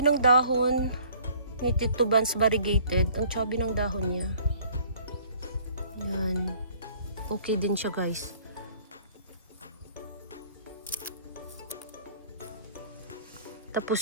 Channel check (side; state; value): both; inverted; correlation -0.55